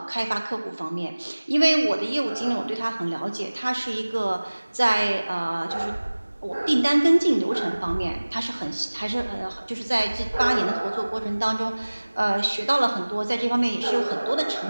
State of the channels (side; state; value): both; inverted; correlation -1.00